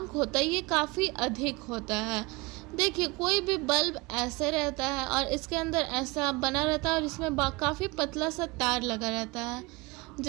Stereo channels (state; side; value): quieter; left; 24.9 dB